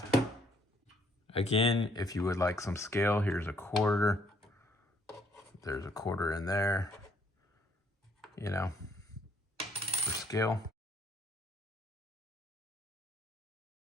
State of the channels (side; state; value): both; normal; correlation 0.66